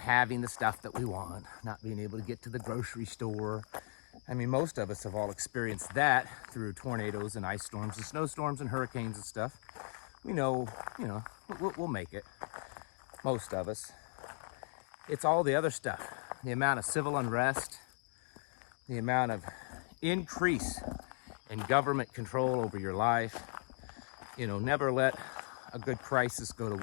the stuff that we want, not being able to get to the grocery store. I mean, most of us have all experienced that through tornadoes and ice storms and snowstorms and hurricanes and stuff. We know, we'll make it. Most of us. It's all the other stuff. The amount of civil unrest, the amount of increase in government control over your life. Never let a good crisis go to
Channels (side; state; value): right; silent; 53 dB below the other